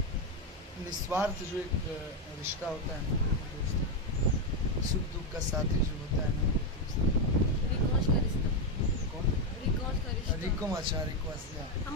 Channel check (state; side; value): normal; both; correlation 0.06